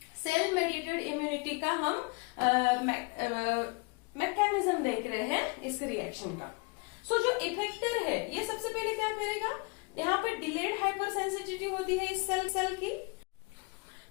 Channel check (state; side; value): quieter; right; 29.3 dB